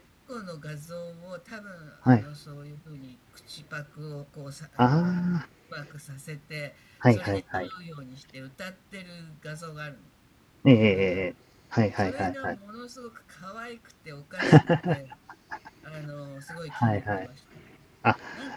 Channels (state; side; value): identical; both; correlation 1.00